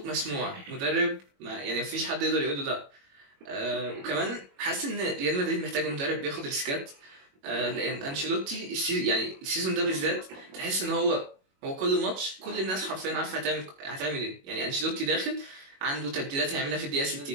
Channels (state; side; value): late; left; 21 ms